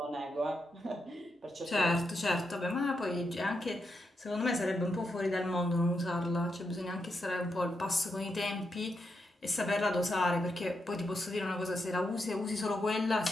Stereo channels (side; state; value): both; normal; correlation 0.83